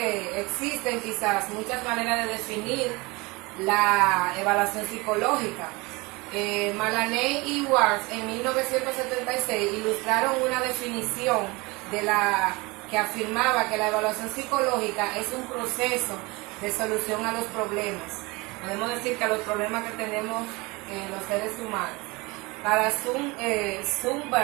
existen quizás muchas maneras de definir la evaluación psicológica. Malaney y Ward en 1976 ilustraron una definición que afirmaba que la evaluación psicológica es un proceso de solución a los problemas. Podemos decir que a los problemas que tenemos los seres humanos. Para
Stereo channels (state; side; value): quieter; left; 24.6 dB